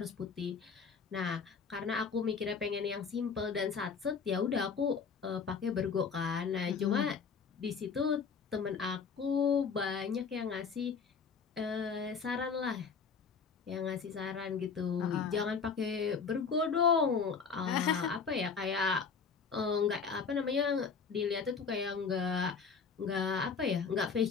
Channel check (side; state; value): right; quieter; 5.7 dB